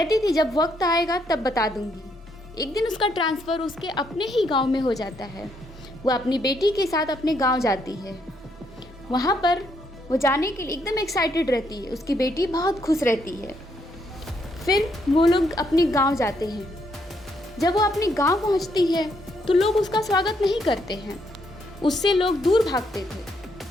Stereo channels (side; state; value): both; normal; correlation 0.74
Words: थी जब वक्त आएगा तब बता दूंगी। एक दिन उसका ट्रांसफ़र उसके अपने ही गांव में हो जाता है। वह अपनी बेटी के साथ अपने गांव जाती है। वहां पर वो जाने के लिए एकदम एक्साइटेड रहती है। उसकी बेटी बहुत खुश रहती है। फिर वो लोग अपने गांव जाते हैं। जब वो अपने गांव पहुंचती है तो लोग उसका स्वागत नहीं करते हैं। उससे लोग दूर भागते थे।